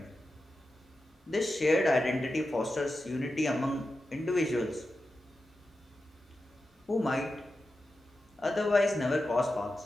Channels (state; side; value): normal; both; correlation 0.91